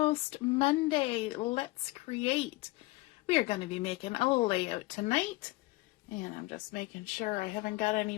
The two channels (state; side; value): quieter; right; 21.3 dB